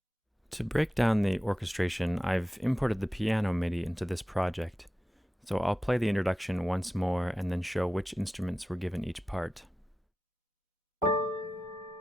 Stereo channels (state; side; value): normal; both; correlation 0.93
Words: To break down the orchestration, I've imported the piano MIDI into this project, so I'll play the introduction once more and then show which instruments were given each part.